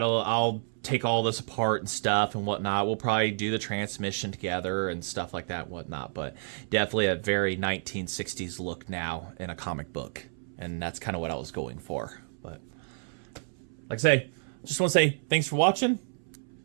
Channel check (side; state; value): left; silent; 58 dB below the other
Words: take all this apart and stuff and whatnot. We'll probably do the transmission together and stuff like that and whatnot. But definitely a very 1960s look now in a comic book. And that's kind of what I was going for. But like I say, just want to say thanks for watching.